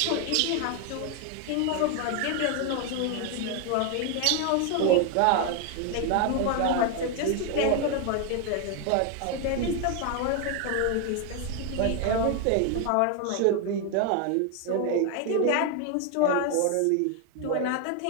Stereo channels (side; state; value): both; different; correlation 0.01